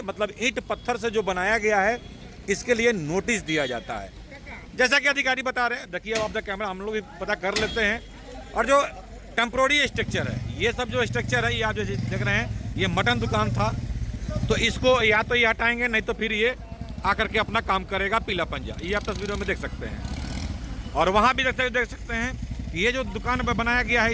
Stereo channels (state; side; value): identical; both; correlation 1.00